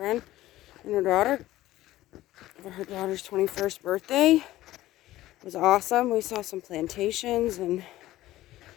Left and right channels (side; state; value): right; quieter; 15.7 dB